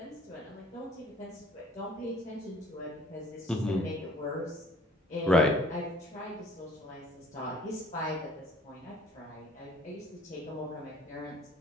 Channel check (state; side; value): normal; both; correlation 0.54